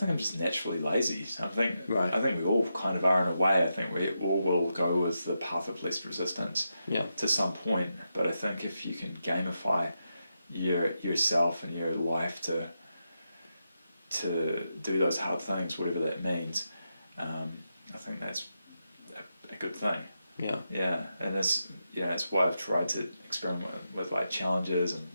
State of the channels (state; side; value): inverted; both; correlation -0.86